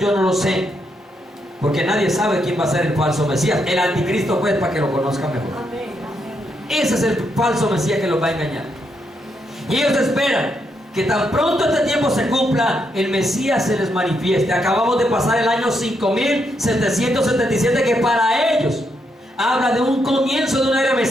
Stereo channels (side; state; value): both; normal; correlation 0.79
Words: no lo sé, porque nadie sabe quién va a ser el falso Mesías. El anticristo, pues, para que lo conozcan mejor. Ese es el falso Mesías que los va a engañar. Y ellos esperan que tan pronto este tiempo se cumpla, el Mesías se les manifieste. Acabamos de pasar el año 5777, que para ellos habla de un comienzo de una era